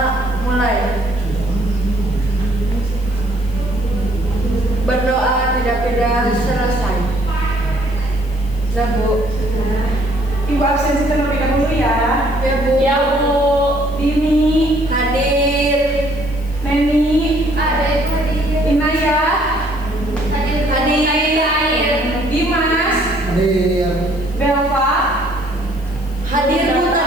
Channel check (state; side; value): noise; left; hiss, 25 dB below the sound